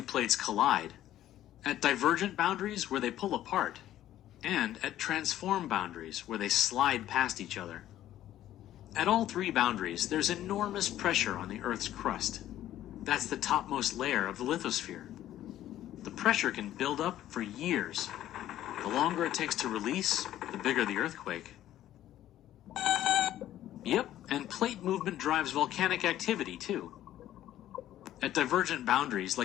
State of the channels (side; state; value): right; quieter; 12.8 dB